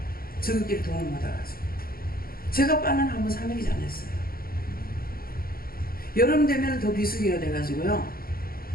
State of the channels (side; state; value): right; late; 0.43 ms